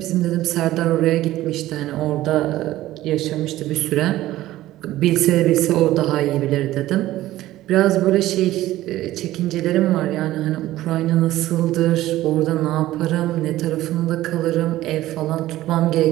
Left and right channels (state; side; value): quieter; left; 15.4 dB